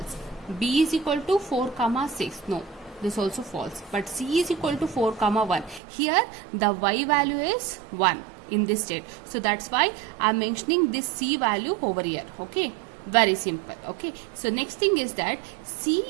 B is equal to 4, 6, no, this also false. But C is equal to 4, 1. Here the y value is 1 in this state. So that's why I am mentioning this C value over here. Okay, very simple. Okay, so next thing is that C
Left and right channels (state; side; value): drops out; left; at 5.8 s